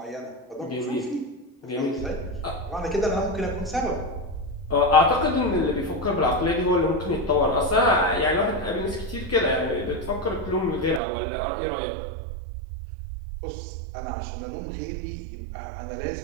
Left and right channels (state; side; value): drops out; left; at 11.0 s